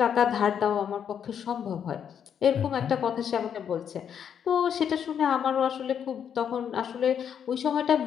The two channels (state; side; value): quieter; right; 8.3 dB